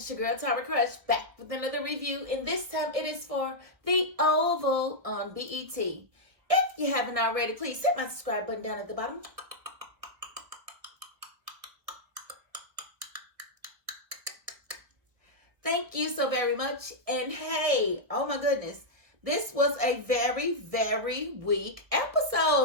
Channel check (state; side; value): late; left; 1.9 ms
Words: girl Tara Crush back with another review, and this time it is for The Oval on BET. If you haven't already, please hit my subscribe button down at the bottom. Thank you so very much. And hey, oh my goodness, this was a very, very weak